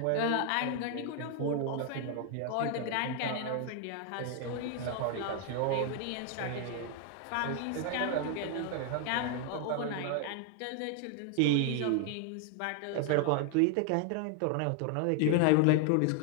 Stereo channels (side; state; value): both; different; correlation 0.00